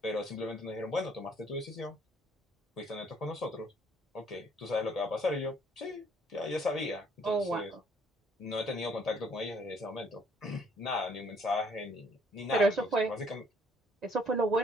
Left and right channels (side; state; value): both; normal; correlation 0.63